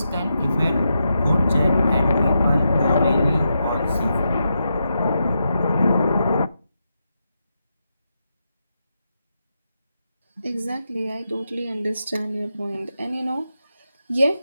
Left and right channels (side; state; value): both; inverted; correlation -0.85